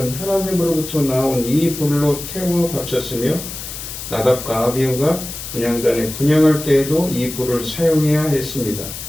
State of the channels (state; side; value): noise; left; hiss, 9 dB below the sound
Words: 하나님으로부터 나온 이 불로 태워 바쳤으며 나답과 아비후가 분향단에 분향할 때에도 이 불을 사용해야 했습니다.